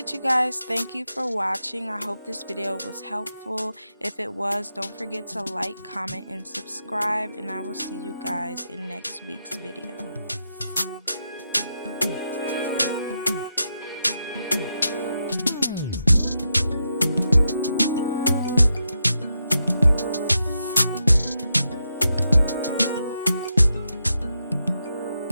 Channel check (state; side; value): inverted; both; correlation -0.85